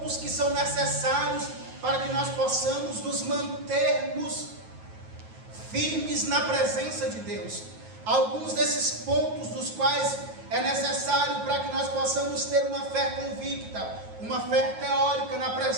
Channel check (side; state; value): left; late; 9.3 ms